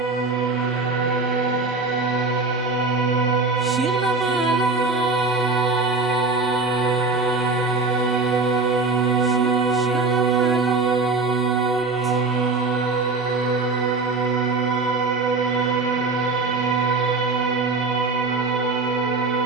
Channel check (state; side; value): quieter; left; 3.8 dB